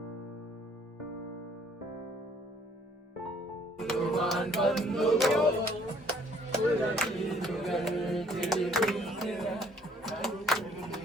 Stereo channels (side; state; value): both; normal; correlation 0.61